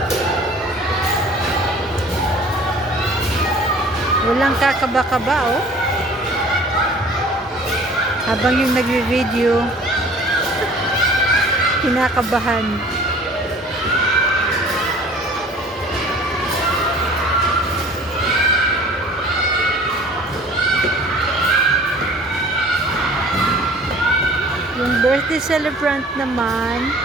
Walang kakaba-kaba, oh. Habang yung nagvi-video, kinakabahan. Yung birthday celebrant naman,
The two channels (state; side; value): normal; both; correlation 0.48